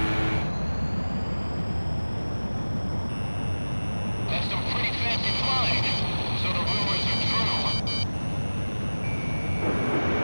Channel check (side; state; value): both; inverted; correlation -1.00